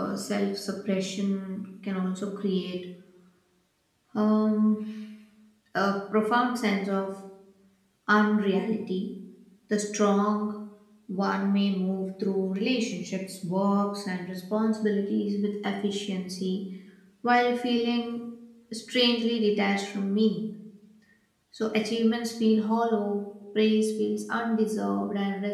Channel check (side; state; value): both; identical; correlation 1.00